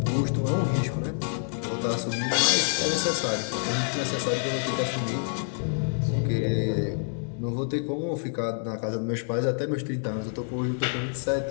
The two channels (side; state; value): right; silent; digital silence